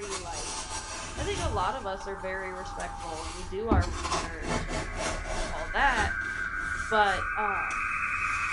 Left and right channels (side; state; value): both; identical; correlation 1.00